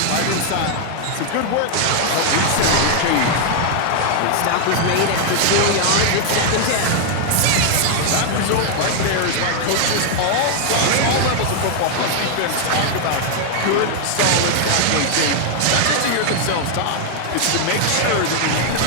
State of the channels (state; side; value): different; both; correlation 0.00